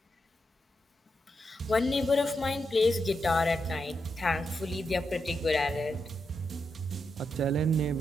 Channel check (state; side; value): normal; both; correlation 0.84